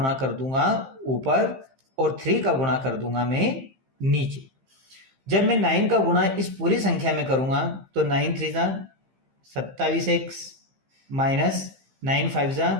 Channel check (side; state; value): left; late; 15 ms